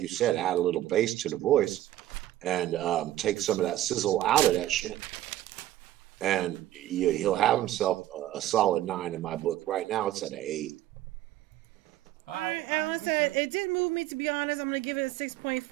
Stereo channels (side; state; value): left; quieter; 14.0 dB